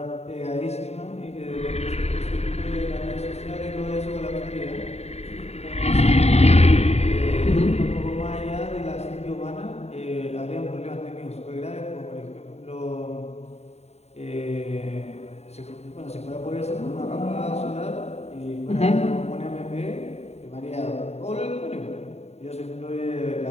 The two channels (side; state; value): right; late; 0.31 ms